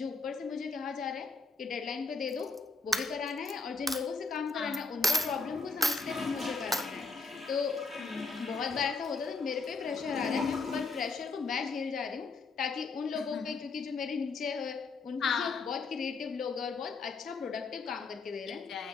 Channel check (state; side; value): quieter; right; 4.1 dB